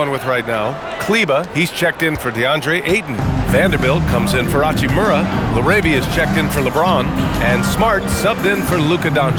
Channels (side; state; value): both; identical; correlation 1.00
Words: with right now. Kleba, he's checked in for DeAndre Ayton. Vanderbilt comes in for Hachimura. Laravia is checked in for LeBron. And Smart subbed in for Luka